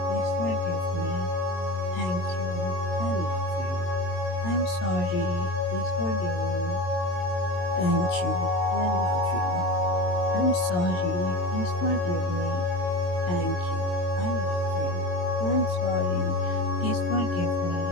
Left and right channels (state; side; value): late; right; 22 ms